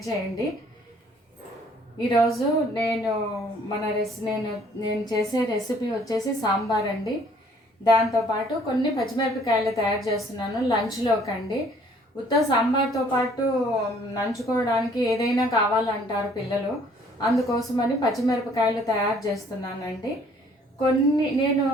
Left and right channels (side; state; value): both; normal; correlation 0.59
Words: చేయండి. ఈరోజు నేను చేసే రెసిపీ వచ్చేసి సాంబార్ అండి. దాంతోపాటు కొన్ని పచ్చిమిరపకాయలు తయారు చేస్తున్నాను లంచ్లోకి అండి. ఉత్త సాంబార్తో పాటు నంచుకోవడానికి ఏదైనా కావాలంటారు పిల్లలు. అందుకోసమని పచ్చిమిరపకాయలు తయారు చేస్తున్నానండి. నేను